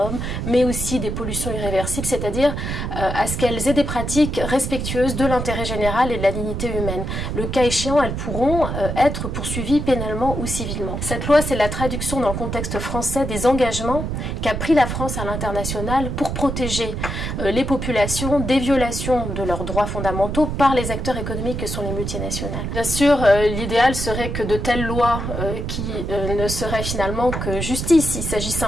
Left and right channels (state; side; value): noise; right; rumble, 4 dB below the sound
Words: mais aussi des pollutions irréversibles, c'est-à-dire à ce qu'elles aient des pratiques respectueuses de l'intérêt général et de la dignité humaine. Le cas échéant, elles pourront être poursuivies pénalement ou civilement. Cette loi, c'est la traduction dans le contexte français des engagements qu'a pris la France à l'international pour protéger les populations des violations de leurs droits fondamentaux par les acteurs économiques que sont les multinationales. Bien sûr, l'idéal serait que de telles lois qui ne seraient finalement que justice. Il s'agit